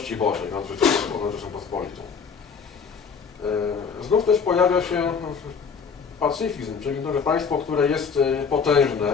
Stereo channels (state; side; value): quieter; right; 6.0 dB